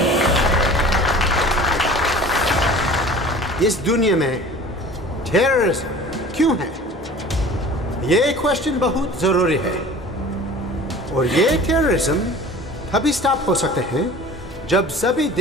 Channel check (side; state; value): both; normal; correlation 0.43